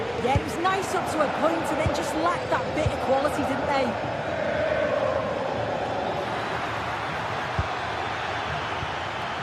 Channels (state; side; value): identical; both; correlation 1.00